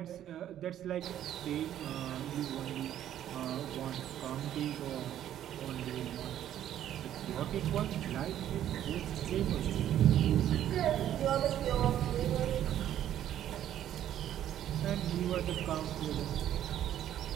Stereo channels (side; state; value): left; quieter; 11.3 dB